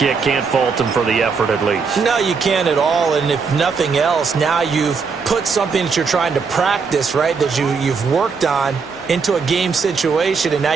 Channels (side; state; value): left; quieter; 5.3 dB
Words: Can't fault them for the effort at least. No, you can't at all. And if nothing else, now you've put something that you're trying to practice, right, that you've worked on into a game situation, and now